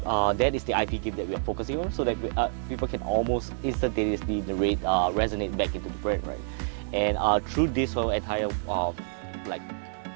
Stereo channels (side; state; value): left; silent; 59 dB below the other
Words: That is the IP gift that we are focusing on, so that people can almost instantaneously resonate back into the brand, right? And through this whole entire